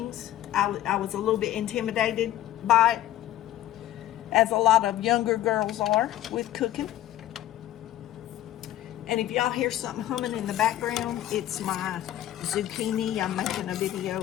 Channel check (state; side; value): quieter; right; 13.3 dB